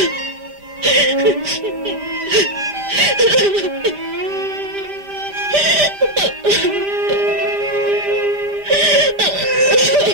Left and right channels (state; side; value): late; left; 5.0 ms